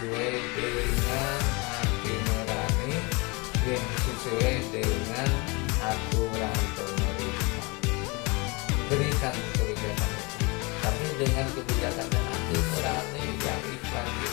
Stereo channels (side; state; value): right; quieter; 27.8 dB